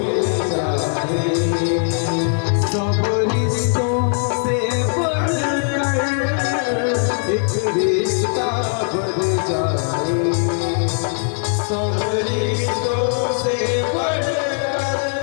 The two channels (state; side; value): silent; right; 61 dB below the other